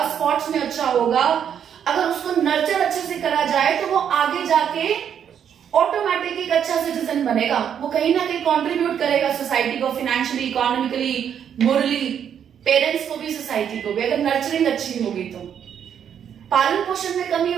स्पोर्ट्स में अच्छा होगा. अगर उसको नर्चर अच्छे से करा जाए तो वो आगे जाके ऑटोमेटिक एक अच्छा सिटीजन बनेगा. वो कहीं ना कहीं कंट्रीब्यूट करेगा सोसाइटी को, फाइनेंशियली, इकोनॉमिकली, मोरली, पेरेंट्स को भी, सोसाइटी को भी, अगर नर्चरिंग अच्छी होगी तो. पालन पोषण में कमी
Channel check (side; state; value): left; quieter; 8.6 dB